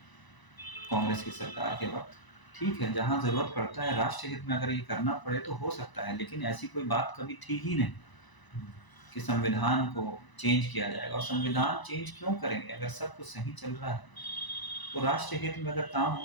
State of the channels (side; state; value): right; late; 1.0 ms